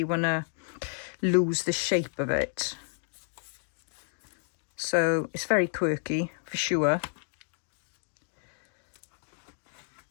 want to lose the shape of it. So it's very quirky for sure.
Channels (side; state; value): right; silent; digital silence